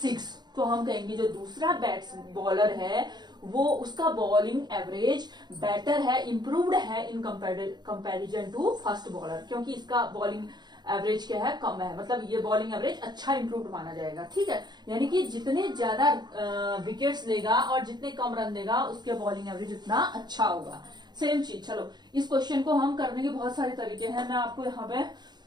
तो हम कहेंगे जो दूसरा बॉलर है वो उसका बॉलिंग एवरेज बेटर है, इंप्रूव्ड है in comparison to first bowler, क्योंकि इसका बॉलिंग एवरेज क्या है कम है, मतलब ये बॉलिंग एवरेज अच्छा इंप्रूव्ड माना जाएगा। ठीक है, यानी कि जितने ज्यादा विकेट्स लेगा और जितने कम रन देगा उसके बॉलिंग एवरेज उतना अच्छा होगा। सेम चीज। चलो इस क्वेश्चन को हम करने के बहुत सारे तरीके हैं। मैं आपको यहाँ पे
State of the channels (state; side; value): late; left; 0.21 ms